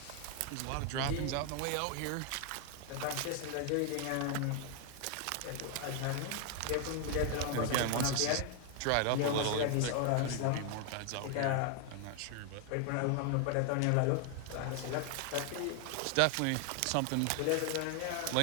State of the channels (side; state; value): both; different; correlation 0.00